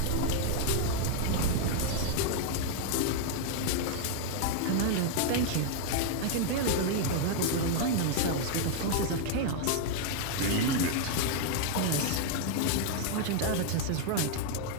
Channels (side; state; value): both; different; correlation 0.00